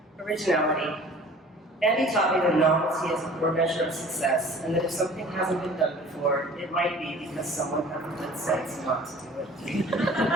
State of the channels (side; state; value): both; normal; correlation 0.47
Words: Originality. Andy taught me that novelty is a core measure of success, and that if something hasn't been done before, it might be because someone had the good sense not to do